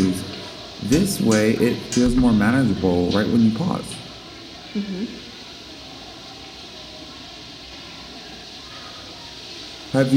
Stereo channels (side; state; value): both; identical; correlation 1.00